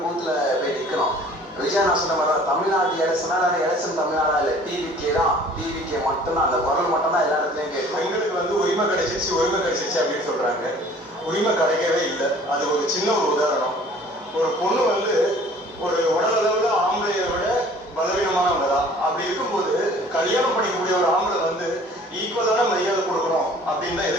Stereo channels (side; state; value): both; normal; correlation 0.51